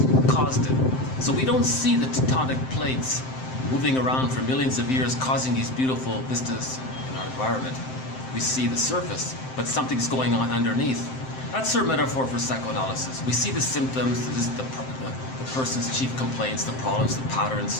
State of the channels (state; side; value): late; right; 7.7 ms